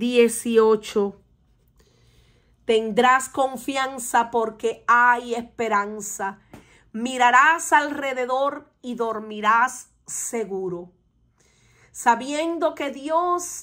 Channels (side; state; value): both; identical; correlation 1.00